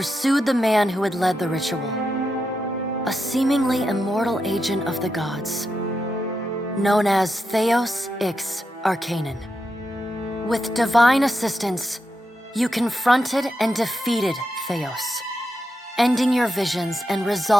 the man who had led the ritual, a seemingly immortal agent of the gods, known as Theos Ix Arcanon. With divine assistance, you confronted and defeated Theos, ending your visions and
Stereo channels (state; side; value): normal; both; correlation 0.86